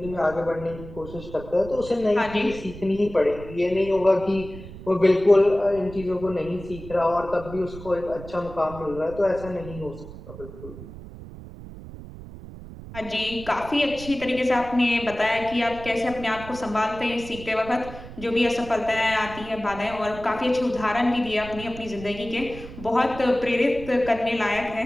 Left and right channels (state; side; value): noise; right; rumble, 14 dB below the sound